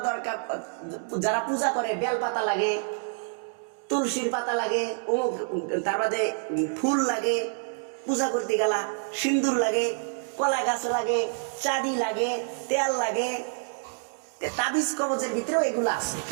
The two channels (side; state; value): left; silent; digital silence